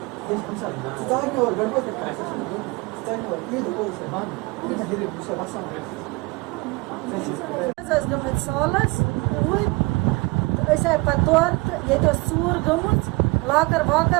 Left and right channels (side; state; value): left; quieter; 25.7 dB